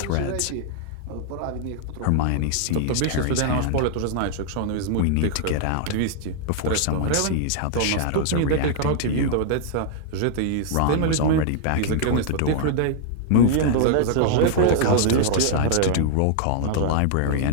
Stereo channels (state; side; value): different; both; correlation -0.01